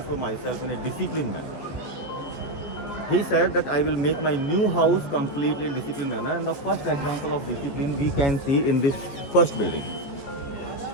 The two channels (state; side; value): late; right; 14 ms